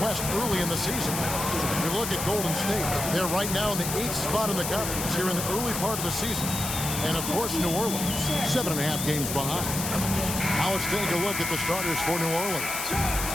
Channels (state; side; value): noise; left; hiss, 4 dB below the sound